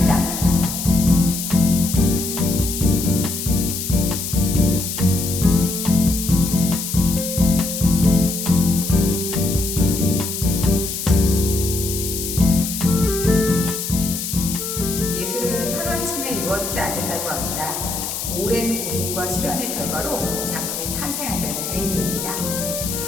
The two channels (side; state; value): left; noise; hiss, 5 dB below the sound